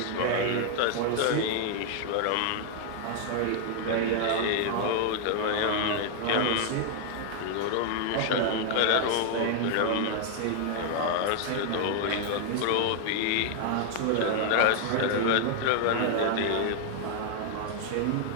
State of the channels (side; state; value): both; different; correlation 0.00